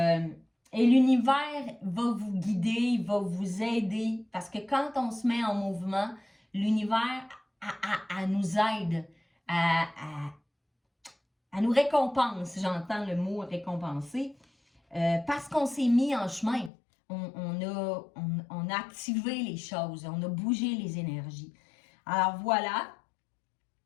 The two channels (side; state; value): right; drops out; at 16.7 s